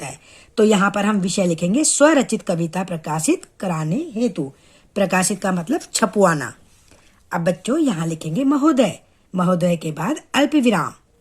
है। तो यहाँ पर हम विषय लिखेंगे स्वरचित कविता प्रकाशित कराने हेतु। प्रकाशित का मतलब छपवाना। अब बच्चों, यहाँ लिखेंगे महोदय, महोदय के बाद अल्प विराम।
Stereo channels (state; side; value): identical; both; correlation 1.00